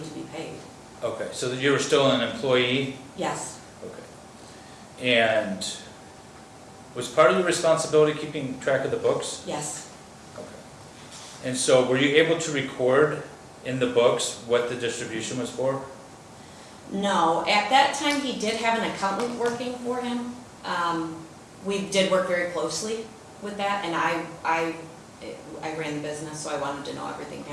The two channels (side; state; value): both; identical; correlation 1.00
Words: to be paid. Okay, so you were still an employee? Yes, Okay. And was part of your responsibility keeping track of the books? yes, Okay. And so were you able to record in the books what the distribution was for? no. At that time, he did have an accountant working for him. We did work very closely with that, and I ran the business, so I wanted to know everything